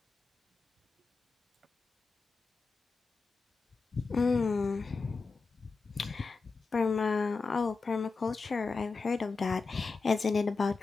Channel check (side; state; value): right; quieter; 4.4 dB